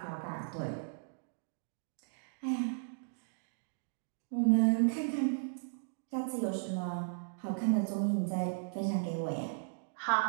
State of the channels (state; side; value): silent; left; digital silence